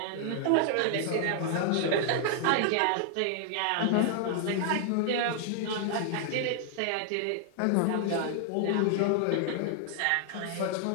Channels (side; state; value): both; different; correlation 0.00